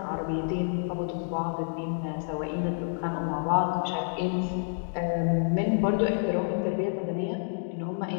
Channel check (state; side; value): silent; right; digital silence